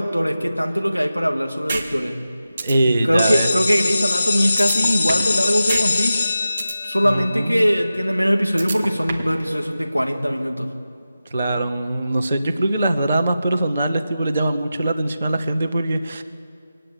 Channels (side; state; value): both; inverted; correlation -0.92